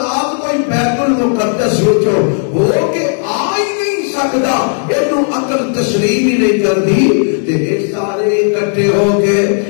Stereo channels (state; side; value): silent; right; 55 dB below the other